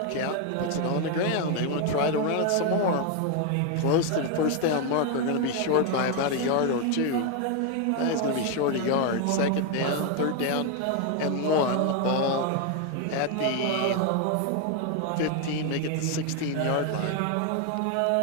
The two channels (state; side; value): different; both; correlation 0.01